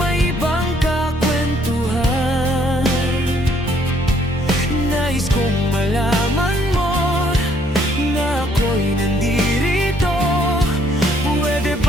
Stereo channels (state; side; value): normal; both; correlation 0.66